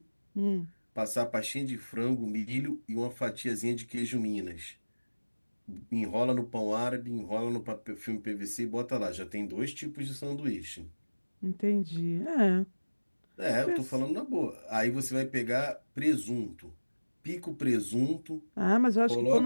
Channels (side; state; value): both; inverted; correlation -1.00